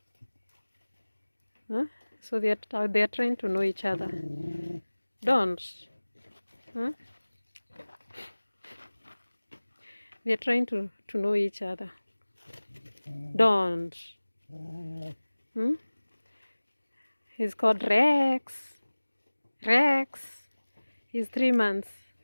so they are trying to know each other. Don't, they are trying to know each other. Don't. He's called Rex. He's 3 months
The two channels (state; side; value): inverted; both; correlation -1.00